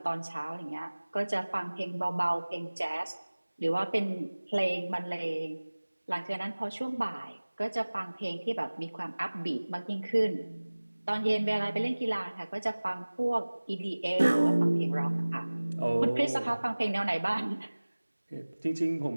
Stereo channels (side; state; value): both; inverted; correlation -1.00